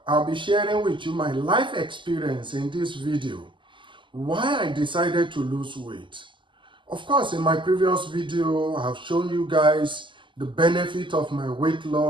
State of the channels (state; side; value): late; left; 0.24 ms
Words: I'll be sharing with you my life experience in this video, why I decided to lose weight. Of course, in my previous video, I've shown you guys the benefit of my weight